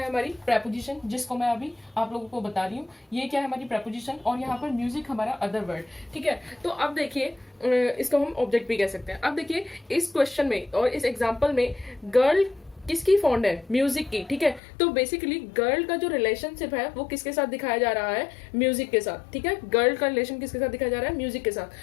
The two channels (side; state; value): right; drops out; at 14.6 s